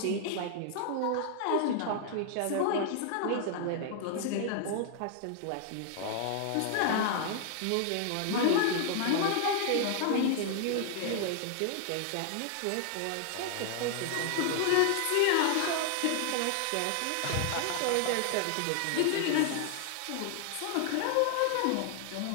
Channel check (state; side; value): different; both; correlation 0.00